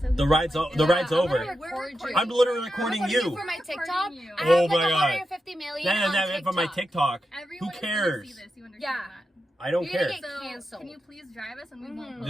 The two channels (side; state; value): both; normal; correlation 0.88